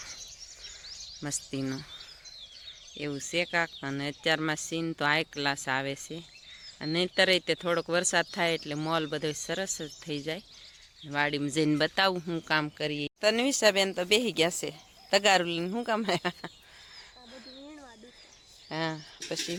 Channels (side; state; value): both; identical; correlation 1.00